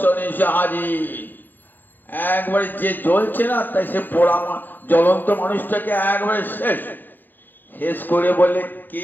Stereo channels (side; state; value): right; late; 0.091 ms